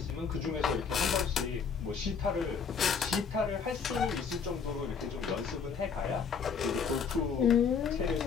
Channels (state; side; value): quieter; right; 6.1 dB